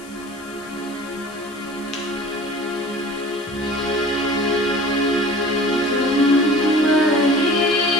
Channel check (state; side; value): noise; left; hiss, 22 dB below the sound